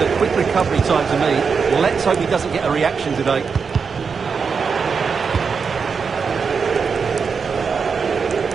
quick recovery time to me. Let's hope he doesn't get a reaction today.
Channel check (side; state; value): left; quieter; 5.7 dB